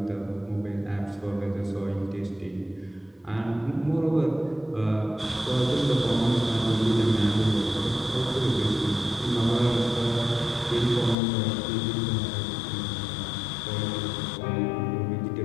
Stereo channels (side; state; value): right; drops out; at 11.2 s